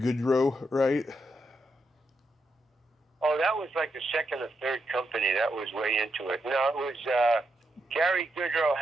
right? Oh, that was like the second or third company that was way into it. No, it was Gary Goodrow,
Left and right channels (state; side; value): normal; both; correlation 0.82